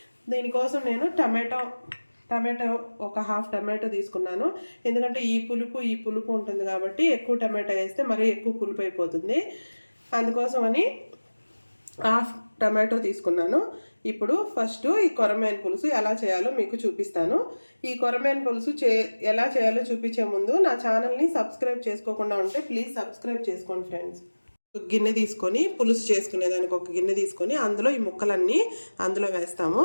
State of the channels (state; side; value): inverted; both; correlation -1.00